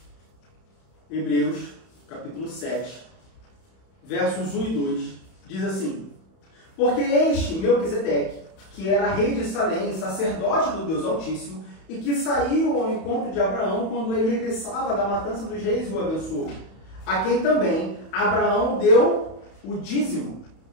Hebreus, capítulo 7, versos 1 e 2, diz assim: porque este Melquisedeque, que era rei de Salém, sacerdote do Deus Altíssimo, e que saiu ao encontro de Abraão quando ele regressava da matança dos reis e o abençoou, a quem também Abraão deu o dízimo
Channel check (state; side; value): late; right; 31 ms